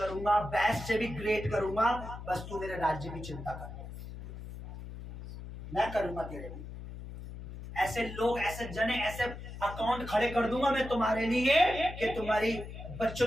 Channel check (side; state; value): left; noise; hum, 11 dB below the sound